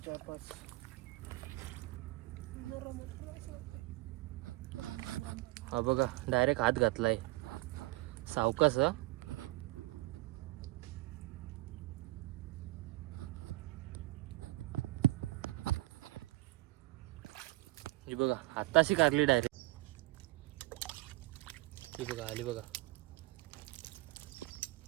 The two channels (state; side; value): quieter; left; 20.3 dB